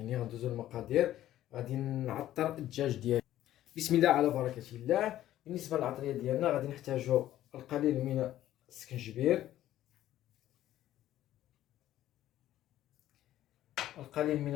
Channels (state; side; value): quieter; right; 13.2 dB